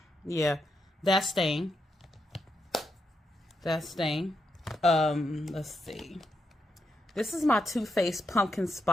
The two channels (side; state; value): both; normal; correlation 0.83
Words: Yeah, that's staying. That's staying. Let's see. This is my Too Faced Pumpkin